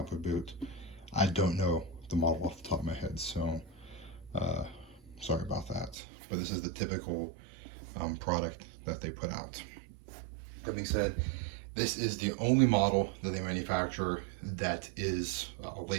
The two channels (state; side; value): drops out; left; at 6.0 s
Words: boot. I don't know the model off the top of my head, so sorry about that. But this is the typical product that they put out. That being said, this is the only model that they manufacture that is a